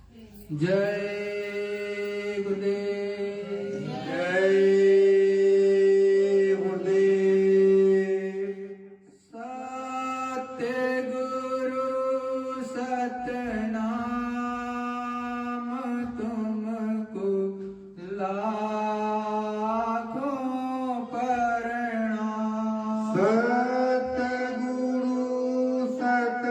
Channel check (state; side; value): identical; both; correlation 1.00